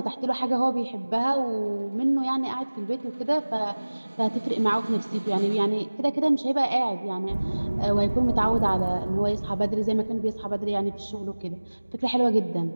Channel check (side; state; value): both; inverted; correlation -1.00